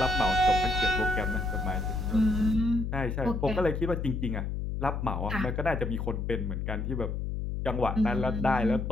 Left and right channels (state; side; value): noise; left; hum, 3 dB below the sound